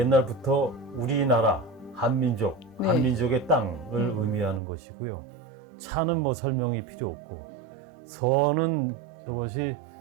우리나라 한민족, 네. 한민족의 땅을 의미하는 것이고요. 차는 뭐 설명이 필요 없고 선은 이것이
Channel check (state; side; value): drops out; left; at 4.6 s